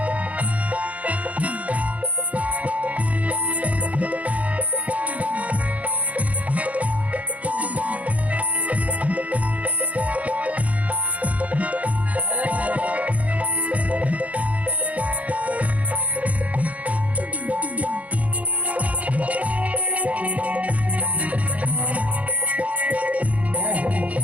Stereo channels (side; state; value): left; late; 0.068 ms